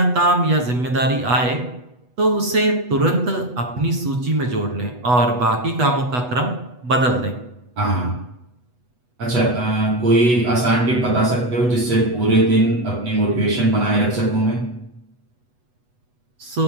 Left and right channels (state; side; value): late; left; 8.1 ms